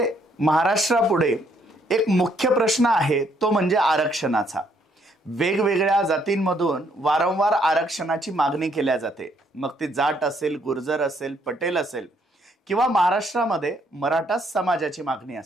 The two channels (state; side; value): normal; both; correlation 0.69